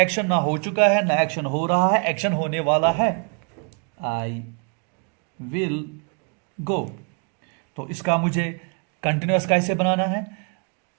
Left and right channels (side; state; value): left; quieter; 39.0 dB